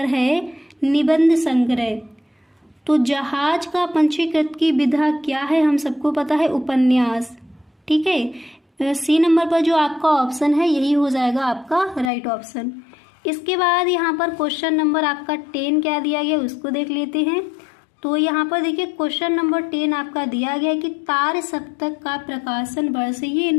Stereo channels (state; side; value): drops out; right; at 12.1 s